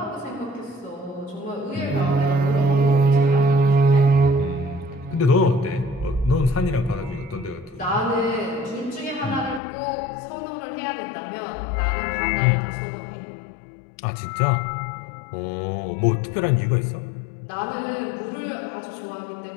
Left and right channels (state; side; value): drops out; right; at 9.6 s